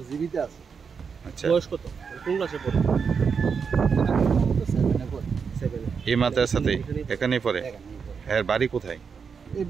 জীবিত আছে। আচ্ছা, বয়স কত? কোন ক্লাসে পড়ে? 7 এই মাদ্রাসাতে এখানেই পড়ে? এর বাড়ি কোথায়? এই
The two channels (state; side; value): quieter; left; 6.0 dB